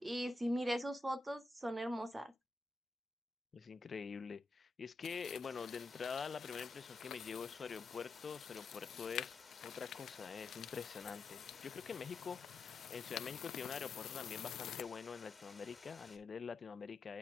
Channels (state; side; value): quieter; right; 3.3 dB